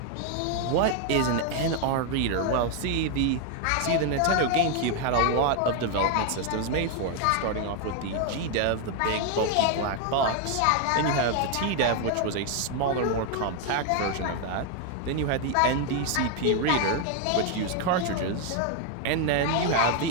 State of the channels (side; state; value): both; different; correlation 0.01